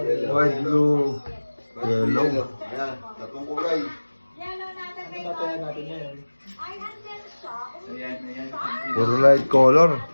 White, blue, yellow. Ayan, tatlong kulay. Ano tatayan natin yan? Ayan. Puro light color.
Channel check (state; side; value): inverted; both; correlation -1.00